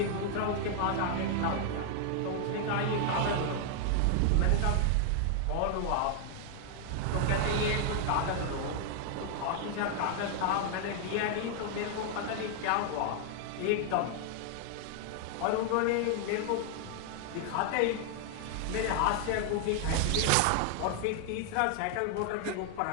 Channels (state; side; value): different; both; correlation 0.00